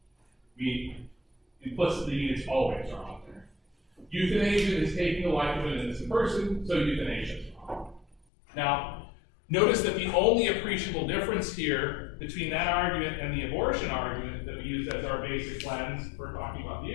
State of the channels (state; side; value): drops out; right; at 8.2 s